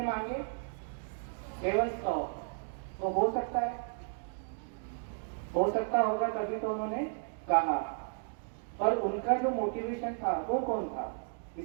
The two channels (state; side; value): silent; left; digital silence